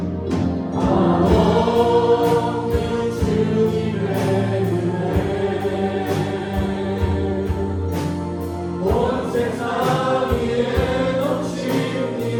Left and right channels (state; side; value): identical; both; correlation 1.00